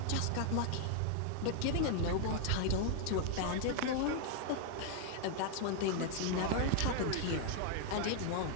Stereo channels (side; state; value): both; different; correlation 0.00